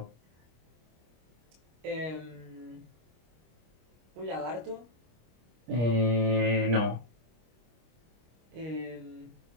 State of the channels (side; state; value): left; late; 25 ms